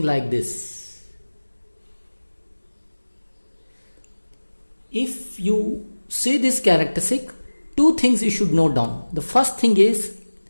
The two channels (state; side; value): inverted; both; correlation -1.00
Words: like this. If you see this characteristic, two things you should note down. The first thing is